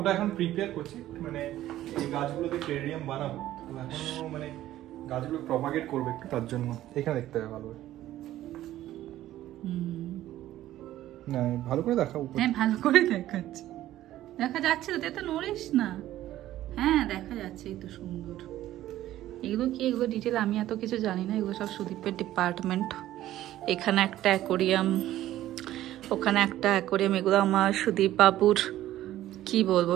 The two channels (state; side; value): quieter; left; 13.9 dB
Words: এখন প্রিপেয়ার করছি, মানে এই গাছগুলোতে টেরিয়াম বানাবো, এখন মানে গাছগুলো প্রপাগেট করবে একটু, তার জন্য এখানে দেখতে হবে ভালো করে। না ভালো করে দেখা, উপরে। হ্যাঁ ভালো করে দেখাচ্ছি, দেখা যাচ্ছে তো, তুই তো নড়িস না, হ্যাঁ দেখা যাচ্ছে, এই তো সুন্দর। এগুলো কি, এগুলো ডিটেল আমি এত কিছু জানি না, এগুলো সব সুদীপের ডিপার্টমেন্ট। এখানে একটা অ্যাকোরিয়াম, ওখানে একটা অ্যাকোরিয়াম, এগুলো আমার সুদীপ বাবুর কি বলবো